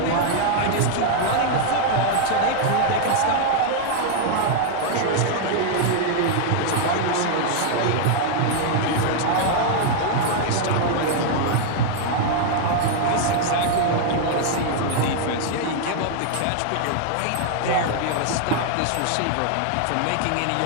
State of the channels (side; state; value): both; different; correlation 0.00